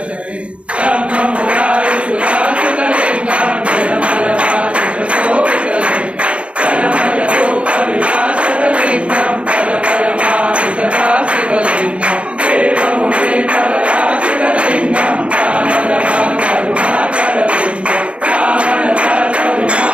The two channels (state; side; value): late; left; 0.060 ms